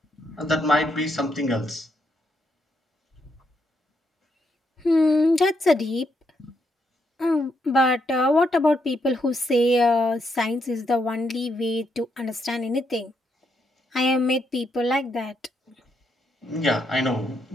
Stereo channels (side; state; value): both; normal; correlation 0.78